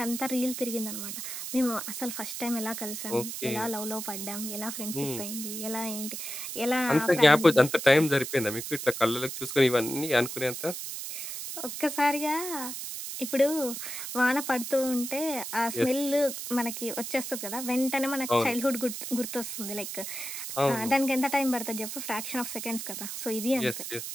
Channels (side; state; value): right; noise; hiss, 6 dB below the sound